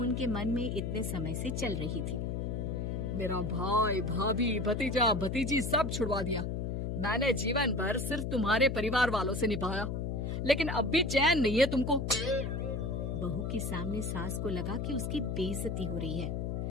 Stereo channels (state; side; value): noise; left; hum, 2 dB below the sound